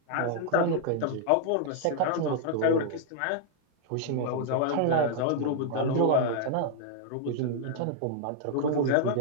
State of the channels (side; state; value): both; different; correlation 0.00